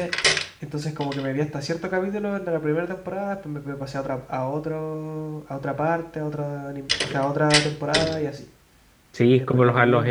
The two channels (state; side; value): identical; both; correlation 1.00